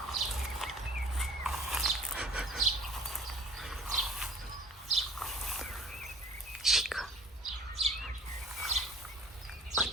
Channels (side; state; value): both; normal; correlation 0.47